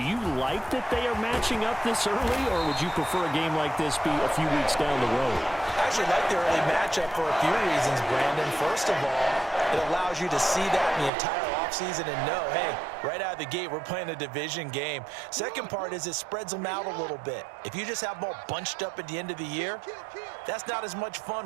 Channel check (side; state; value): left; drops out; at 11.1 s